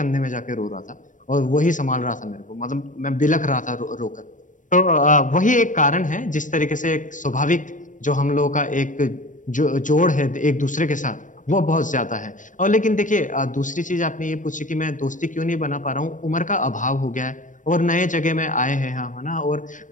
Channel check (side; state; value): right; late; 0.37 ms